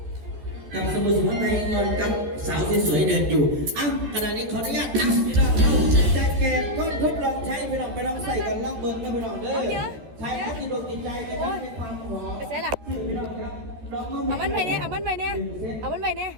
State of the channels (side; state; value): left; late; 13 ms